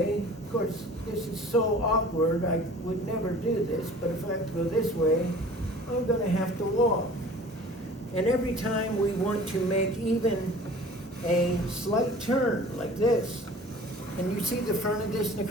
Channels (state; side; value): normal; both; correlation 0.46